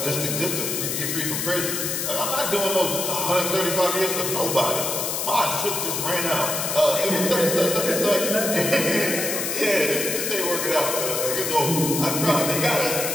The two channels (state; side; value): noise; left; hiss, 1 dB below the sound